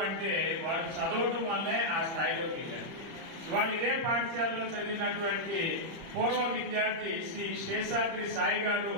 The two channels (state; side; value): late; left; 30 ms